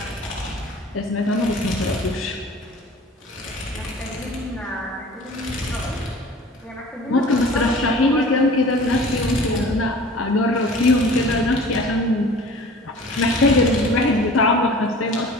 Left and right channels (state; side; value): normal; both; correlation 0.44